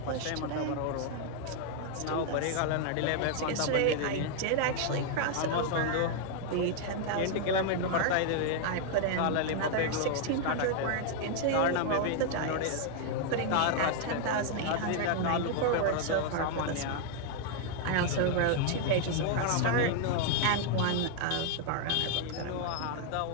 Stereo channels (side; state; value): both; different; correlation 0.00